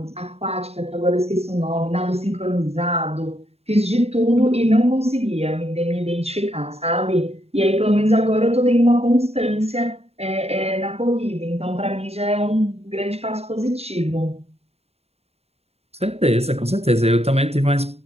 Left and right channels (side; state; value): left; late; 0.30 ms